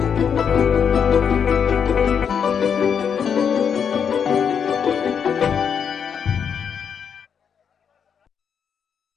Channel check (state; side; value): quieter; right; 7.3 dB